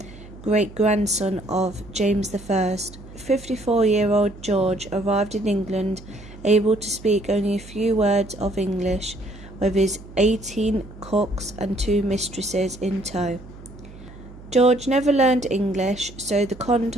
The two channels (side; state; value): right; noise; hum, 18 dB below the sound